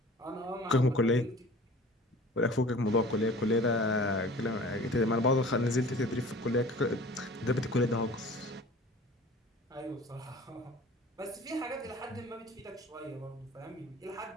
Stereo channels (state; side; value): normal; both; correlation 0.43